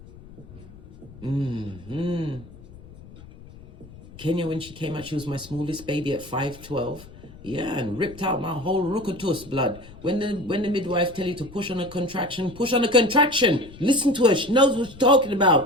Kenya, when she came out, she was my smallest baby at 5'12". Yeah, and ripped out my whole ruckus blood. When the midwife tell you to push on a contraction, push on a contraction. Listen to her. She knows what she's talking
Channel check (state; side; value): noise; left; rumble, 19 dB below the sound